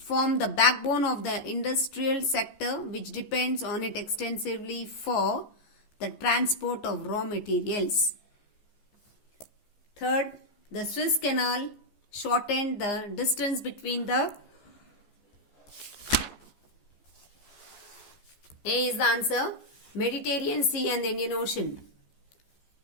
the backbone of the industrial sector which depends on it extensively for the transport of raw materials. Third, the Suez Canal shortened the distance between the A is the answer, Mediterranean Sea and the Indian Ocean.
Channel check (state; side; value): late; right; 14 ms